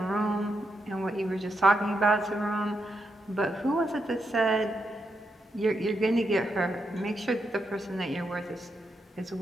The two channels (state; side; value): normal; both; correlation 0.83